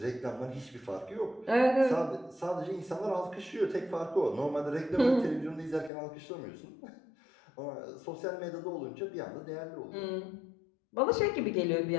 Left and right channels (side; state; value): right; drops out; at 5.9 s